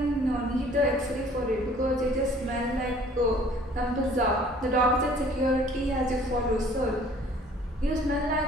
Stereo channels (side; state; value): both; normal; correlation 0.54